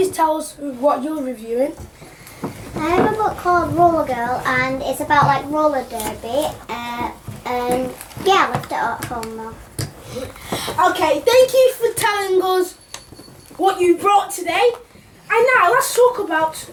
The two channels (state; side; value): identical; both; correlation 1.00